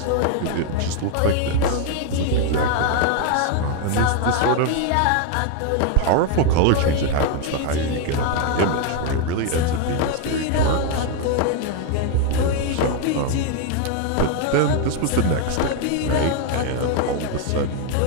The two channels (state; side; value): different; both; correlation 0.01